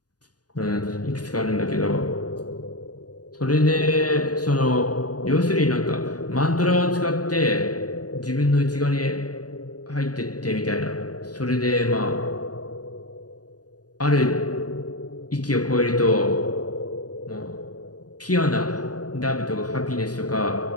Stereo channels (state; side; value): late; right; 0.68 ms